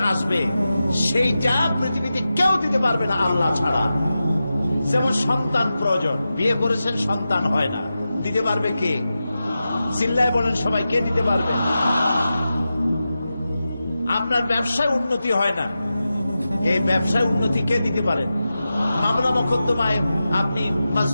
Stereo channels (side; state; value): both; inverted; correlation -0.92